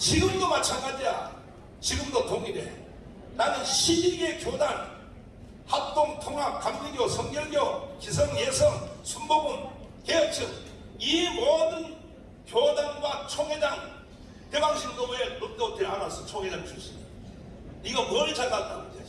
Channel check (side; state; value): both; identical; correlation 1.00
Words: 마찬가지야. 지금도 동일해. 나는 12개 교단, 합동, 통합, 감리교, 성결교, 기성, 예성, 순복음, 개혁층, 이 모든 교단과 총회장, 대방신도 왜 롯데 호텔 안 왔어? 총회장 출신이. 네가 뭘 잘났다고, 이